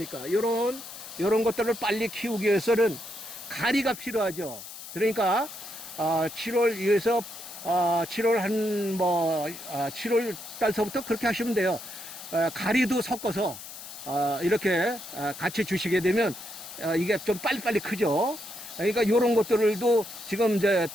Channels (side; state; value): left; noise; hiss, 13 dB below the sound